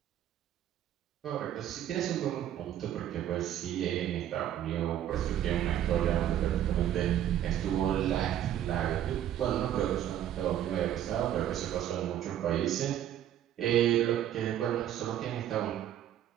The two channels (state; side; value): quieter; left; 11.2 dB